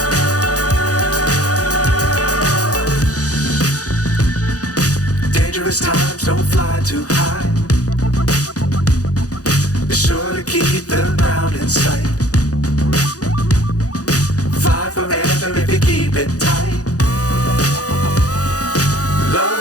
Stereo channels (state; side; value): late; right; 0.67 ms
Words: Times don't fly too high. Be sure to keep the ground in sight. Fly forever if you keep it tight. Love